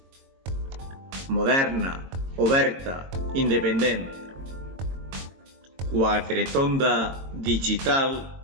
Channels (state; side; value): late; left; 22 ms